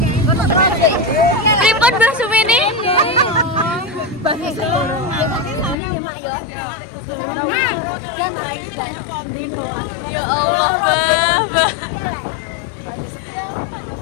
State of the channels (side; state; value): right; drops out; at 5.8 s